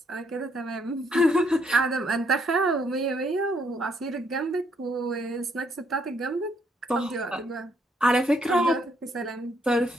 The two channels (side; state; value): both; normal; correlation 0.71